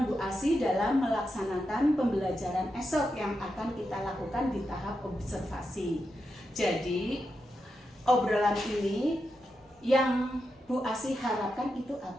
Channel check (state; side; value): normal; both; correlation 0.87